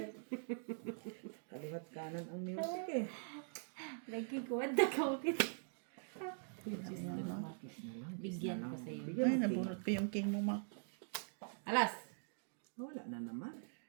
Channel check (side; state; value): left; silent; digital silence